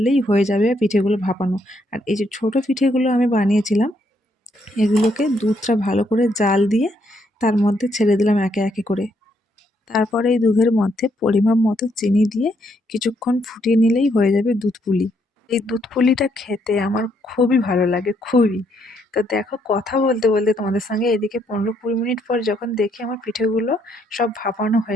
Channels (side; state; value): both; normal; correlation 0.73